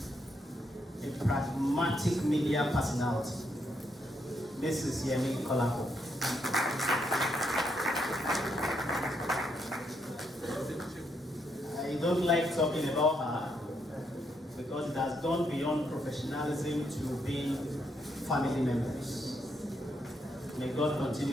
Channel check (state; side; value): normal; both; correlation 0.77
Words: a pragmatic media personality, Mrs. Yemi Kolako. I don't like talking about her because it has gone beyond professionalism to being family members. May God